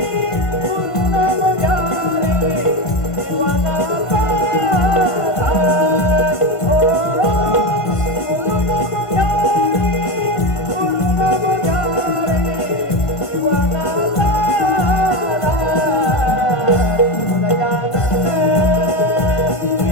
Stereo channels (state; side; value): late; right; 1.5 ms